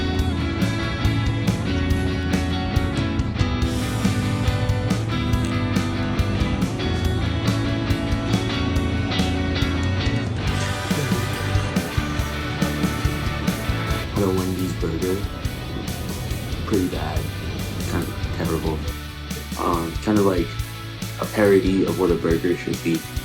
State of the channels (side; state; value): both; identical; correlation 1.00